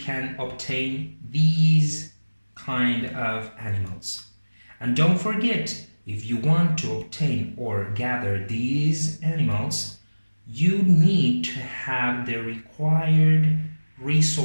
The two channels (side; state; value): both; inverted; correlation -1.00